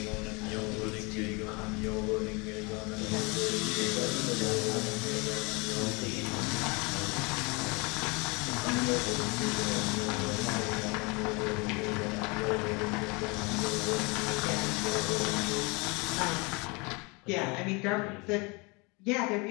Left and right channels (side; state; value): right; quieter; 28.4 dB